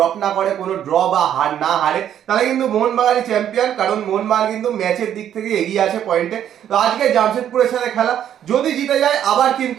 না করে, কোনো ড্র বা হার না হারে, তাহলে কিন্তু মোহনবাগানই চ্যাম্পিয়ন, কারণ মোহনবাগান কিন্তু ম্যাচের দিক থেকে এগিয়ে আছে পয়েন্টে। তো আজকে জামশেদপুরের সাথে খেলা, যদি জিতে যায় আবার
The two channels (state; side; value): quieter; left; 10.2 dB